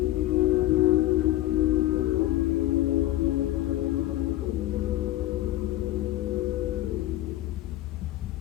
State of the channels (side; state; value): right; quieter; 14.9 dB